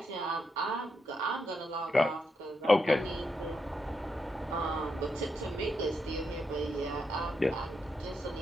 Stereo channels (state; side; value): normal; both; correlation 0.82